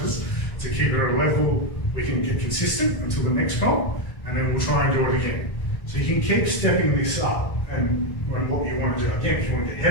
to keep her at a level we can get consistent until the next comp, and then we'll try and do it again. So you can keep stepping this up and what you want to do. Again, if you want to get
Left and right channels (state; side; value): late; right; 1.6 ms